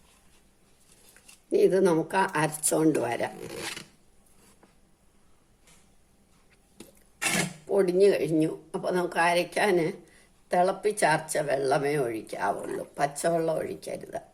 ഇത് നമുക്ക് അരച്ചോണ്ട് വരാം. പൊടിഞ്ഞു കഴിഞ്ഞു. അപ്പോൾ നമുക്ക് അരയ്ക്കാൻ തിളപ്പിച്ചാർച്ച വെള്ളമേ ഒഴിക്കാവുള്ളൂ, പച്ചവെള്ളം ഒഴിക്കരുത്.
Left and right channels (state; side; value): identical; both; correlation 1.00